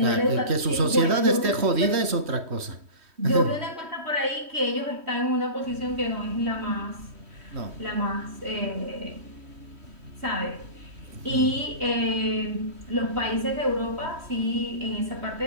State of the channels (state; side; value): late; left; 3.1 ms